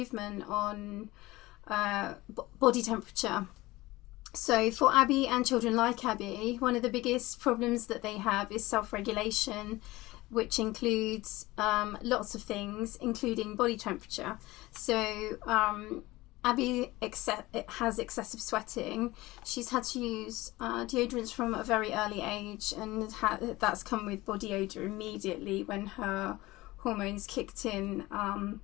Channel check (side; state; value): right; quieter; 19.5 dB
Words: on body temperature. So for Abby and children like Abby, one of the biggest problems that they have is self-regulation, which includes lots of things, including body temperature. So Abby has excessive sweating. She's had to use deodorants from a very early age, and that's come with body odor immediately when her hormones kicked in.